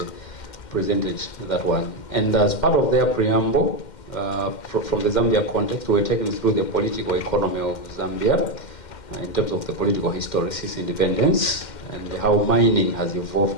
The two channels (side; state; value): right; late; 2.1 ms